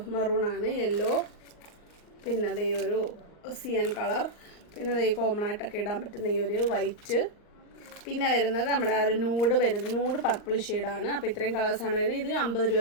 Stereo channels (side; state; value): right; late; 39 ms